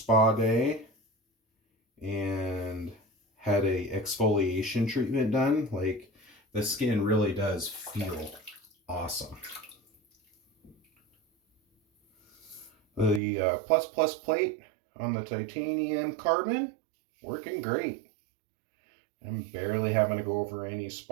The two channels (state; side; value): drops out; left; at 13.2 s